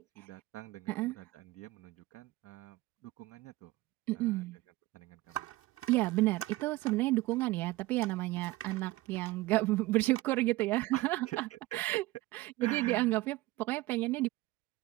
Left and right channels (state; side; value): quieter; left; 19.1 dB